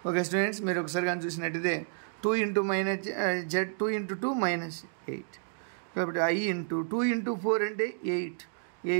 Okay students, మీరు ఒకసారి కానీ చూసినట్టయితే 2 into minus z 2 into 2 minus 8. కాబట్టి I into 2 into 4 అంటే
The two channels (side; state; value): left; silent; digital silence